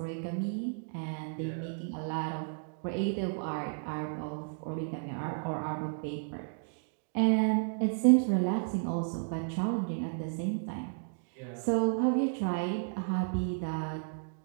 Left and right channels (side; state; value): left; silent; digital silence